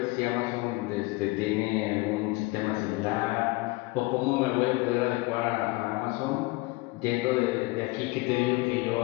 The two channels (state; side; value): quieter; right; 23.5 dB